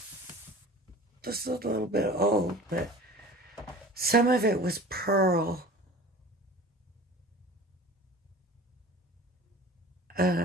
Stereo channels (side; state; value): both; normal; correlation 0.40